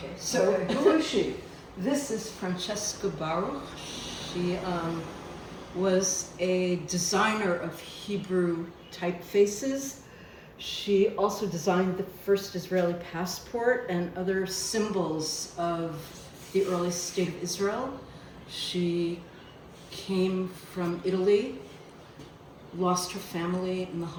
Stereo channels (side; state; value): both; identical; correlation 1.00